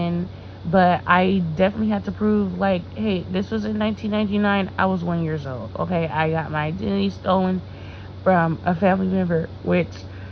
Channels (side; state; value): both; identical; correlation 1.00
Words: but I definitely had to prove like, hey, this was in 1999. I was 1 year old. Okay, I got my identity stolen from a family member, which,